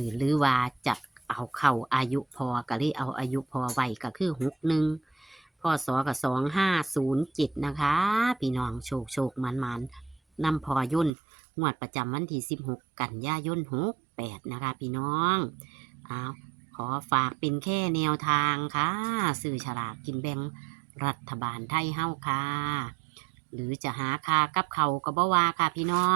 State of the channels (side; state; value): left; drops out; at 11.1 s